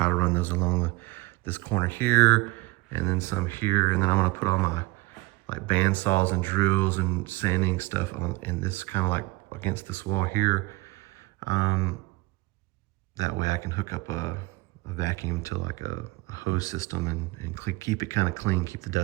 to run those along this corner here, and then some here, and then I'm gonna put all my like band saws and drills and sanding stuff in this kind of like against this wall here. That way I can hook up a vacuum to like a hose system and keep it kind of clean, keep the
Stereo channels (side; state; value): left; quieter; 22.3 dB